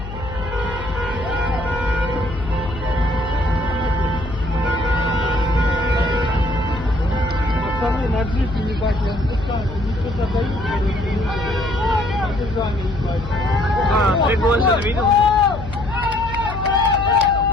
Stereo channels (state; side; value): noise; left; hum, 10 dB below the sound